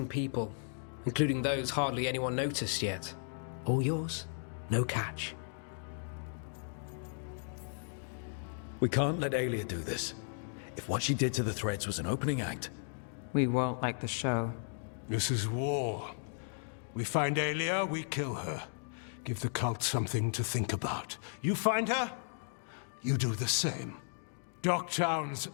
people, including those hardly anyone noticed yet. All yours, no catch. We can't let Alia do this. If what she did to the Threads was an opening act... We won't like the show. This is war. We find Alia, we kill her. Give the cult something to think about. You find her, you do the same. Docktown's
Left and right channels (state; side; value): silent; right; digital silence